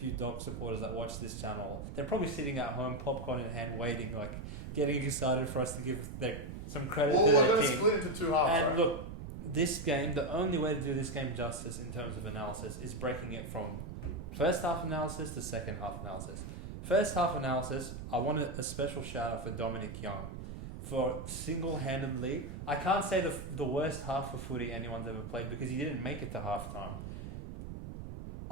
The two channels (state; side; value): noise; right; rumble, 9 dB below the sound